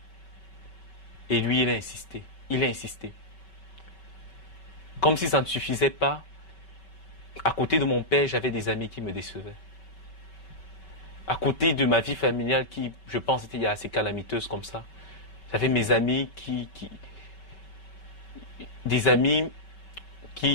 Et lui, il a insisté. Comme si ça ne suffisait pas, à côté de mon père, j'avais des amis qui me décevaient. À côté de ma vie familiale qui, je pense, était assez calamiteuse comme ça, j'avais mes amis des amis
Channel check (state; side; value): late; right; 5.3 ms